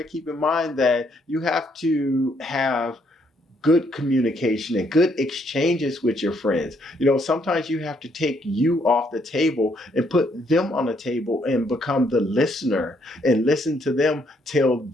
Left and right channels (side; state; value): both; normal; correlation 0.71